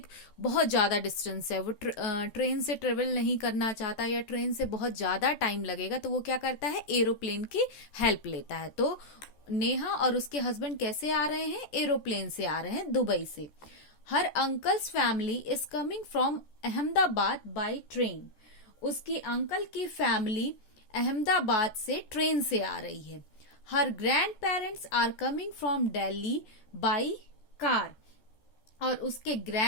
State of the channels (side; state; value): right; late; 14 ms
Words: बहुत ज्यादा डिस्टेंस है, वो ट्रेन से ट्रेवल नहीं करना चाहता या ट्रेन से बहुत ज्यादा टाइम लगेगा, तो वो क्या करता है? एरोप्लेन की हेल्प लेता है. तो नेहा और उसके हस्बैंड कैसे आ रहे हैं? एरोप्लेन से आ रहे हैं, दुबई से. Her uncle's family is coming from Ahmedabad by train. उसकी अंकल की फैमिली अहमदाबाद से ट्रेन से आ रही है. Her grand parents are coming from Delhi by car. और उसके